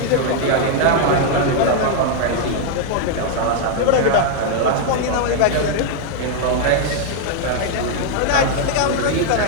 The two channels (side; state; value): both; different; correlation 0.00